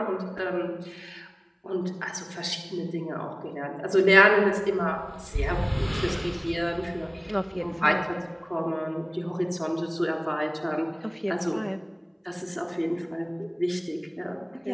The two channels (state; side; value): identical; both; correlation 1.00